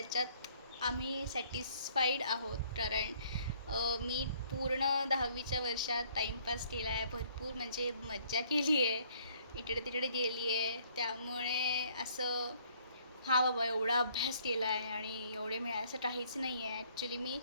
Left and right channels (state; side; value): inverted; both; correlation -0.62